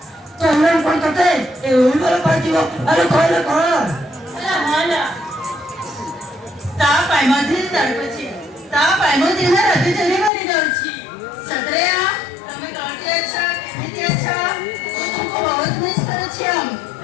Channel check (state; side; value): drops out; right; at 10.3 s